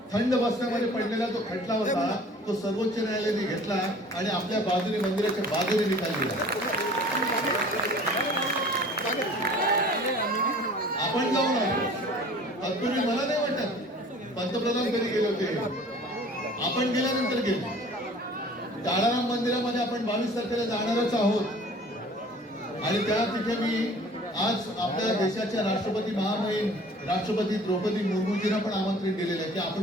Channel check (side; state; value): both; normal; correlation 0.48